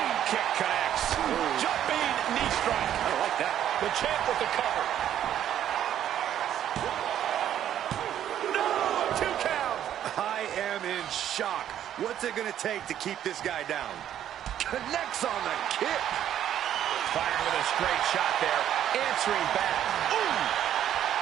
kick connects. Jumping knee strike. I like that. The champ with the cover. No, 2 count. I am in shock. What's it going to take to keep this guy down? Connects on the kick. Firing with a straight shot there. Answering back. Ooh.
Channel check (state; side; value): quieter; left; 10.7 dB